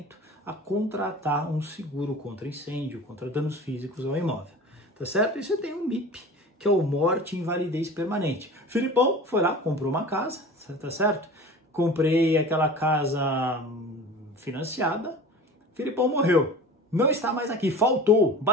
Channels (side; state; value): both; normal; correlation 0.37